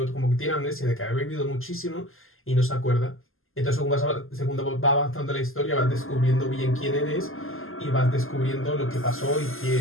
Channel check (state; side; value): late; right; 0.60 ms